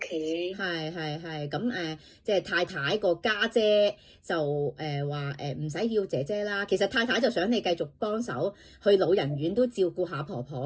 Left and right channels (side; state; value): both; identical; correlation 1.00